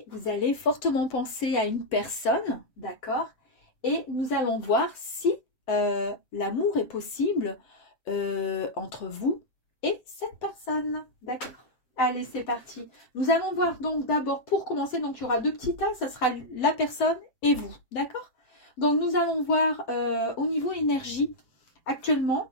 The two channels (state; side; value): late; right; 7.9 ms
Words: vous allez fortement penser à une personne, d'accord? Et nous allons voir si l'amour est possible entre vous et cette personne, d'accord? Allez, c'est parti. Nous allons voir donc d'abord, pour commencer, donc il y aura deux petits tas, ça sera la personne et vous, d'accord? Donc nous allons voir au niveau énergie, actuellement,